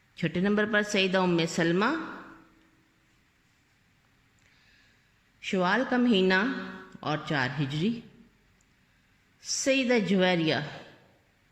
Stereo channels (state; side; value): identical; both; correlation 1.00